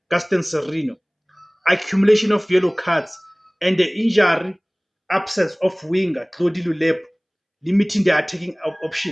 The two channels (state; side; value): identical; both; correlation 1.00